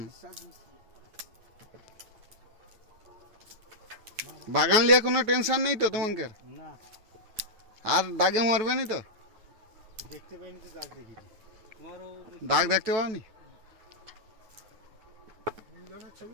ডিসচার্জ মিস্ত্রি বাগান নিয়ে কোনো টেনশন নেই তো তোমাকে না আর দাগে মারবে নি তো দেখতে পাইনি তো দাগ দেখেছি তোমারও দাগ দেখতে পাওনি মিলনের ছবি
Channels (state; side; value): late; left; 9.2 ms